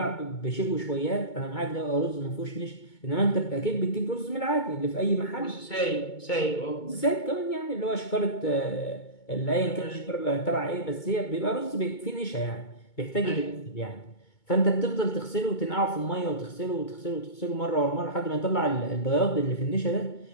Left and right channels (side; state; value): right; late; 2.2 ms